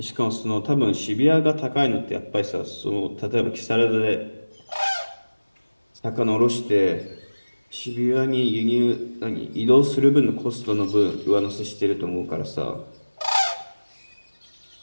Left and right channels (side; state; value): both; inverted; correlation -1.00